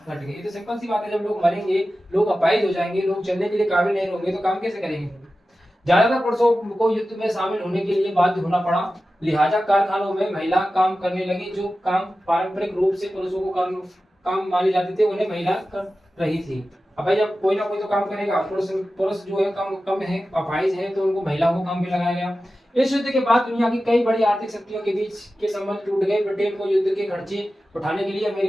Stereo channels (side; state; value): both; normal; correlation 0.94